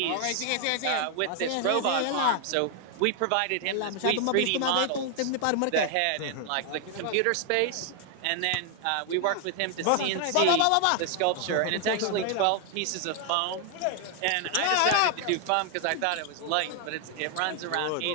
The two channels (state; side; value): different; both; correlation 0.00